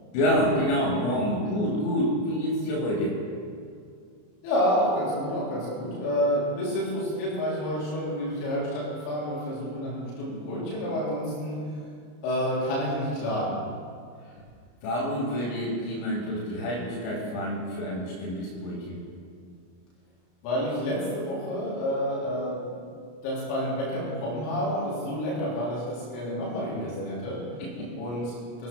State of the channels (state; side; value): late; right; 33 ms